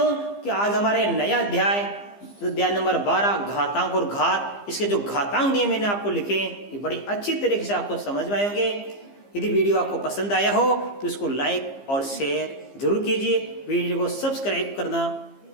कि आज हमारे नया अध्याय नंबर 12 घातांक और घात, इसके जो घातांक नियम मैंने आपको लिखे ये बड़ी अच्छी तरीके से आपको समझ में आएंगे। यदि वीडियो आपको पसंद आया हो तो इसको लाइक और शेयर जरूर कीजिए, वीडियो को सब्सक्राइब करना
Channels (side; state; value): right; late; 15 ms